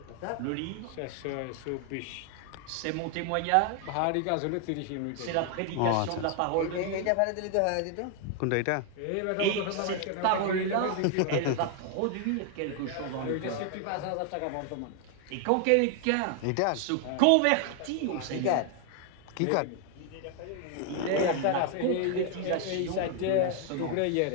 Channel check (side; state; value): both; different; correlation 0.00